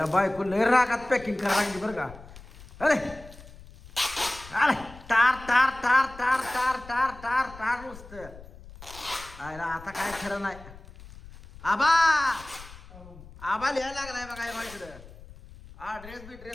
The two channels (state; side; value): noise; left; rumble, 18 dB below the sound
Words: बायको लय रागात पॅकिंग करायला लागली बरं का. अरे अरे टार टार टार टार टार टार टार टार नुसतं. आयला आता काय खरं नाही. आबा आबा लिहायला लागलाय बघा या बाईकडं. हा ड्रेस